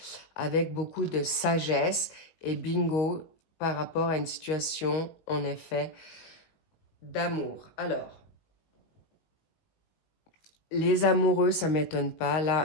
avec beaucoup de sagesse et bingo par rapport à une situation, en effet, d'amour. Alors, les amoureux, ça ne m'étonne pas.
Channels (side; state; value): right; late; 19 ms